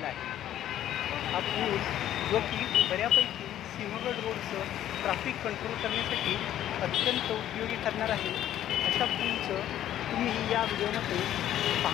आहे. हा पूल जो की बऱ्यापैकी सिंहगड रोडचं ट्रॅफिक कंट्रोल करण्यासाठी अत्यंत उपयोगी ठरणार आहे. अशा पूलचं तुम्ही या व्हिडिओमध्ये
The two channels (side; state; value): right; quieter; 11.9 dB